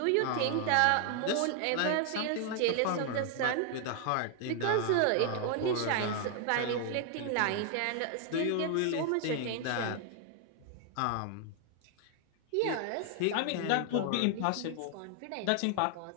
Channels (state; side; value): different; both; correlation 0.00